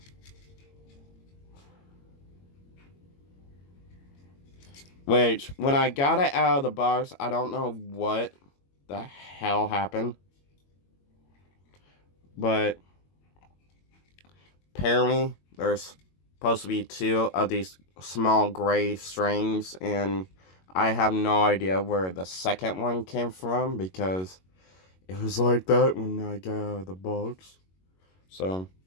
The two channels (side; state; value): right; late; 22 ms